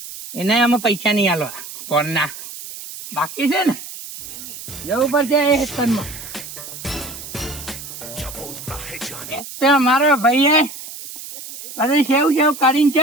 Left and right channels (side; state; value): right; noise; hiss, 12 dB below the sound